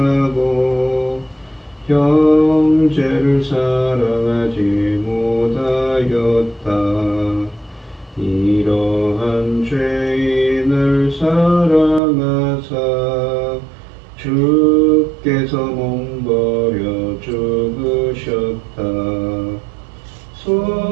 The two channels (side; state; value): left; drops out; at 12.0 s